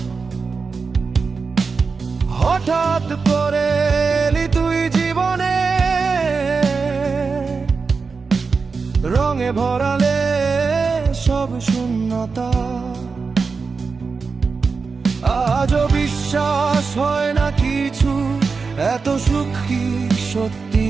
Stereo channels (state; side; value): quieter; left; 4.8 dB